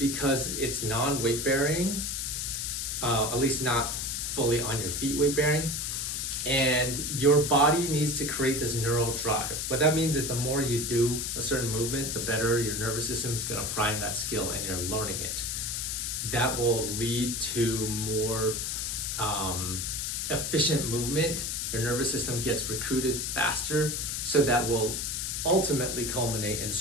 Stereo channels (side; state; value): left; noise; hiss, 2 dB below the sound